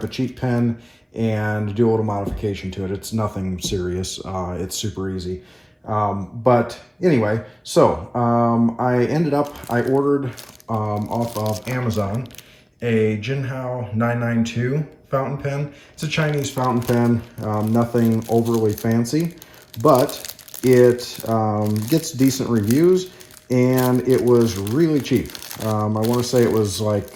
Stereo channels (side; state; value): both; identical; correlation 1.00